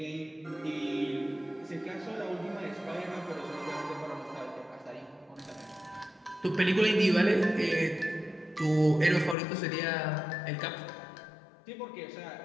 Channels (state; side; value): drops out; right; at 9.3 s